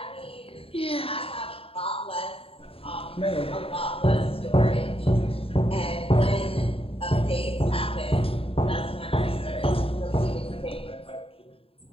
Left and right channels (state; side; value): late; right; 0.27 ms